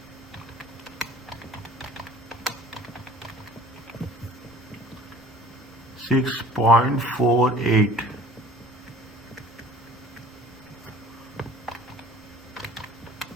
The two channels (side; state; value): both; normal; correlation 0.49